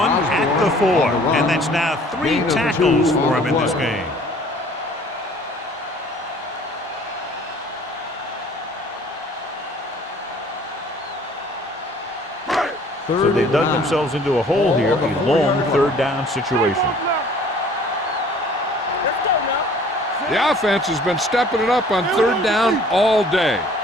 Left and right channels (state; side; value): normal; both; correlation 0.53